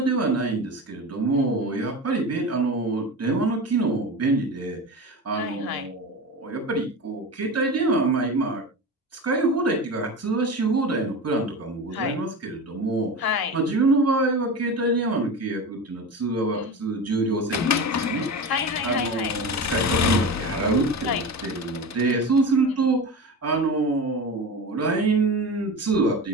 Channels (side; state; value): both; normal; correlation 0.28